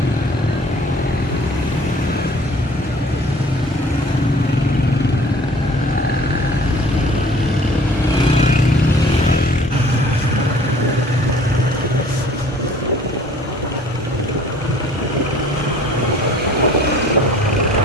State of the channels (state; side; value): normal; both; correlation 0.52